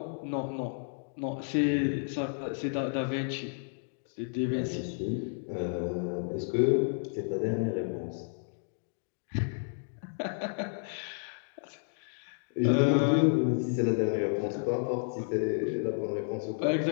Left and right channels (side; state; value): right; silent; digital silence